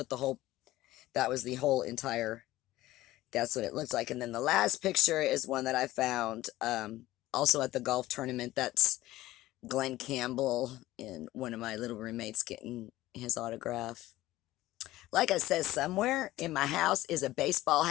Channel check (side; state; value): right; quieter; 16.4 dB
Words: that was the whole entire, that's what it looks like. And then the last picture is one that I found also at the golf tournament. That's Glenn Campbell and one of my little roommates getting his autograph. Like I said, somewhere in my house is a baseball